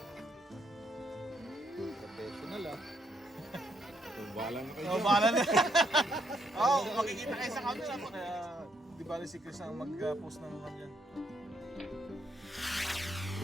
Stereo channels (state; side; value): normal; both; correlation 0.74